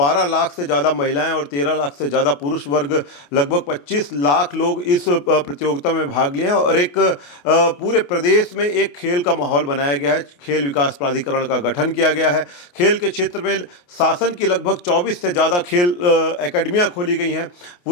लाख से ज़्यादा महिलाएँ और 13 लाख से ज़्यादा पुरुष वर्ग, लगभग 25 लाख लोग इस प्रतियोगिता में भाग लिए हैं और एक पूरे प्रदेश में एक खेल का माहौल बनाया गया है। खेल विकास प्राधिकरण का गठन किया गया है। खेल के क्षेत्र में शासन की लगभग 24 से ज़्यादा खेल एकेडमियाँ खोली गई हैं,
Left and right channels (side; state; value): right; late; 28 ms